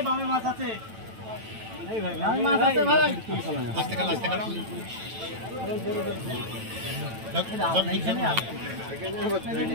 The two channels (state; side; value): late; left; 9.1 ms